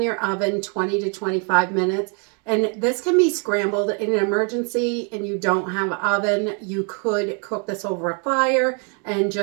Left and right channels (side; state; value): left; quieter; 37.0 dB